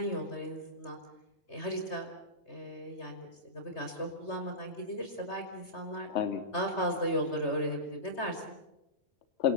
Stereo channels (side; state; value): right; late; 3.3 ms